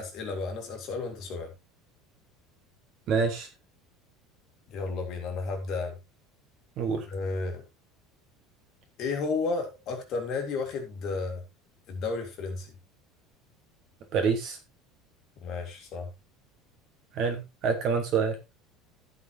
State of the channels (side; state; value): both; normal; correlation 0.46